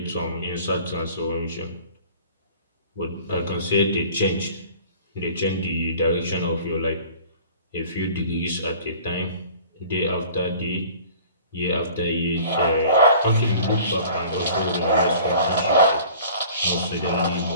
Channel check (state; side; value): inverted; both; correlation -0.47